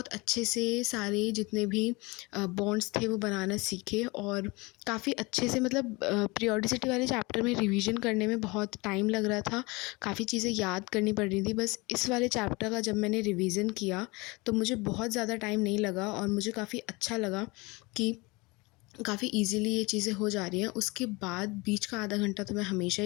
अच्छे से सारे जितने भी बॉन्ड्स थे वो बनाना सीखे। और काफ़ी अच्छे से मतलब पीरियोडिसिटी वाले चैप्टर में रिवीजन करने में बहुत टाइम लग रहा था, काफ़ी चीज़ें याद करनी पड़ रही थी। बस इस वाले चैप्टर का जब मैंने रिवीजन किया तो मुझे बहुत ज़्यादा टाइम नहीं लगा और मुझे काफ़ी अच्छा लगा कि काफ़ी इजीली ये चीज़ें हो जा रही हैं। उसके बाद बीच का आधा घंटा तो मैं हमेशा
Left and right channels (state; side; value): quieter; right; 24.9 dB